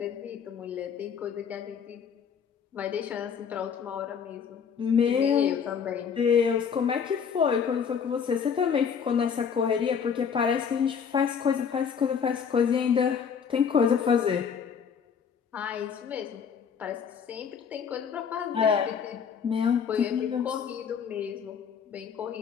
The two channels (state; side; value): quieter; right; 7.0 dB